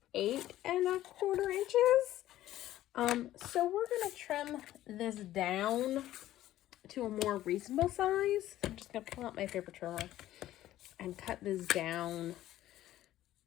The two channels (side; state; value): right; quieter; 13.9 dB